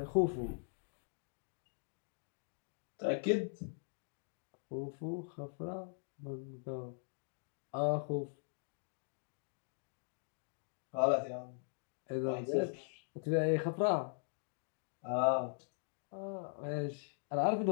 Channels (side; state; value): right; silent; digital silence